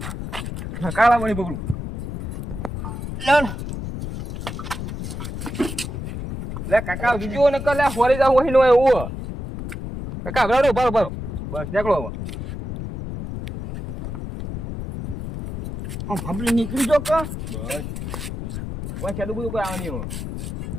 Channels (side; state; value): left; noise; rumble, 6 dB below the sound